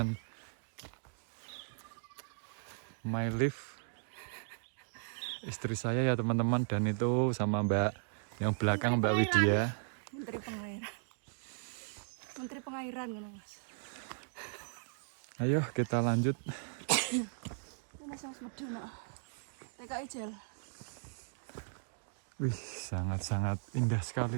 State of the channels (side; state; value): left; silent; digital silence